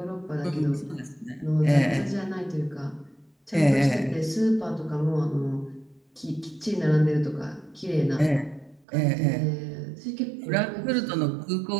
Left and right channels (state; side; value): drops out; left; at 8.8 s